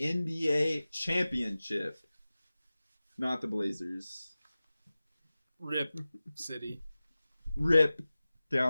championship. Not the Blazers. Rip City. Rip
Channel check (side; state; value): both; inverted; correlation -0.97